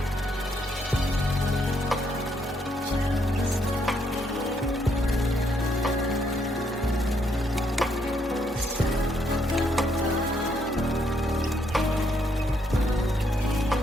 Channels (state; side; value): normal; both; correlation 0.73